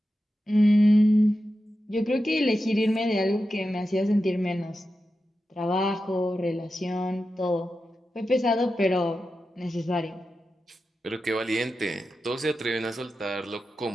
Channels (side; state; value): both; normal; correlation 0.91